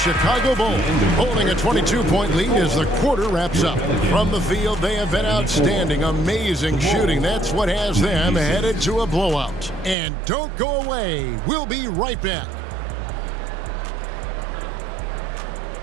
Bulls holding a 22-point lead as the quarter wraps up. From the field, they have been outstanding, amazing shooting. That's what has them headed to a blowout. And don't go away. We'll be right back.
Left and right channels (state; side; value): drops out; left; at 10.0 s